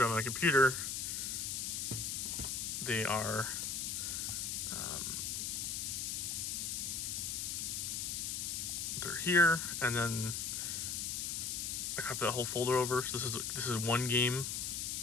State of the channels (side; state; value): left; noise; hiss, 2 dB below the sound